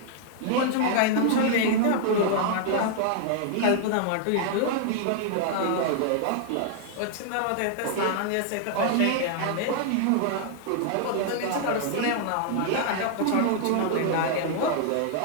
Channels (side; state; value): both; different; correlation -0.01